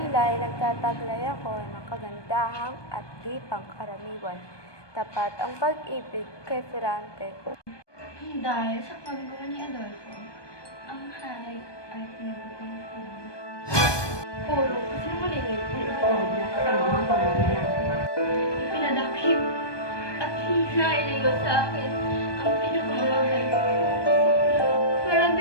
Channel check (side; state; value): right; late; 1.2 ms